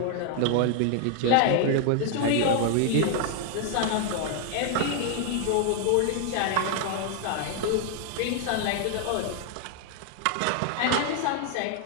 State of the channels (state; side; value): different; both; correlation 0.00